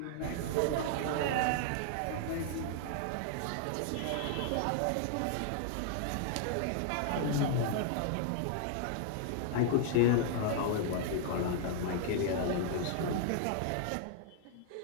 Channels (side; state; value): both; different; correlation -0.01